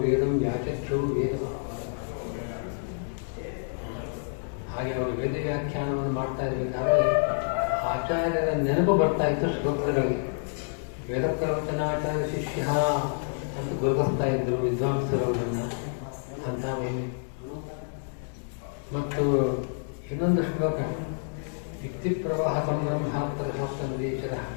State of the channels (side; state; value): right; silent; digital silence